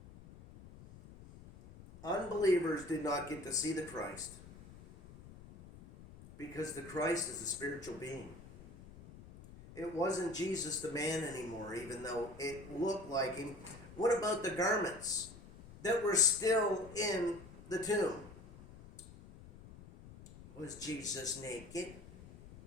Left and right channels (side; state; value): left; noise; rumble, 18 dB below the sound